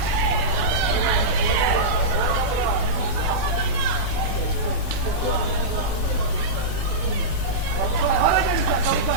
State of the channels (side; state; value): left; late; 12 ms